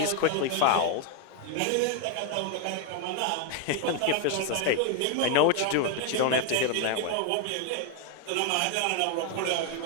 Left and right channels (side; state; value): both; different; correlation 0.01